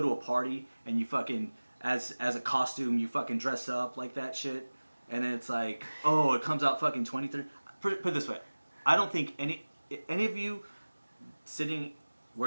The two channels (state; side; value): inverted; both; correlation -1.00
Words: a party and you fucking as a costume, you fucking dress up like that shit, and then it's like, oh, it comes out fucking 23. Put it this way, I don't think any of you sitting